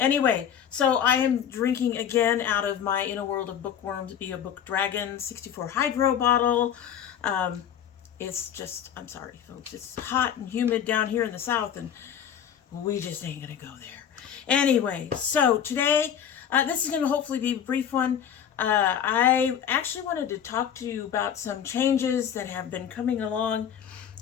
so I am drinking again out of my In a World of Bookworms Be a Book Dragon 64 Hydro bottle. It's just, I'm sorry, folks, it's hot and humid down here in the south, and we just ain't gonna go there. Anyway, so today, this is gonna hopefully be a brief one. I actually wanted to talk to you about some changes that have been coming along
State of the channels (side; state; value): right; quieter; 8.8 dB